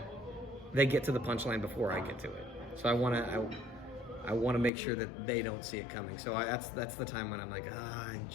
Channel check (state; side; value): drops out; right; at 4.7 s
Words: to the punchline before I get to it. So I want to make sure that they don't see it coming. So that's the time when I'm like, I